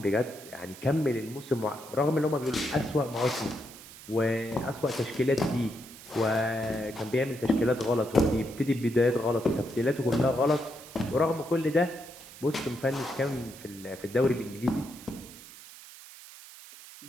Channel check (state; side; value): noise; right; hiss, 17 dB below the sound